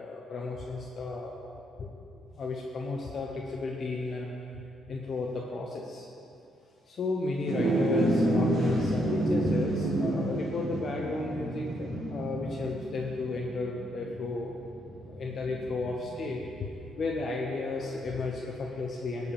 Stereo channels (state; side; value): normal; both; correlation 0.75